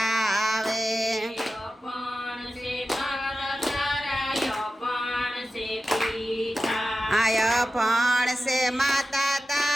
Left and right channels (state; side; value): normal; both; correlation 0.93